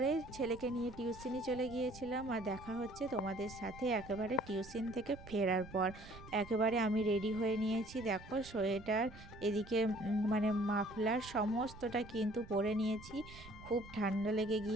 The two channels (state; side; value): noise; right; rumble, 17 dB below the sound